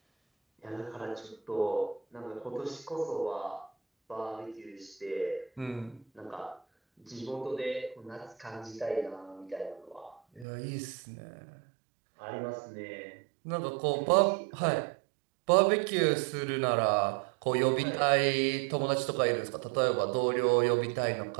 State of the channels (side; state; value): left; drops out; at 10.5 s